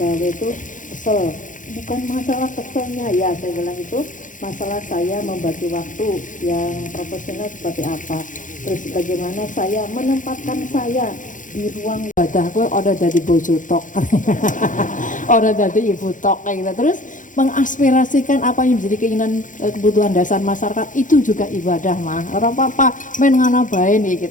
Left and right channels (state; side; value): late; right; 0.38 ms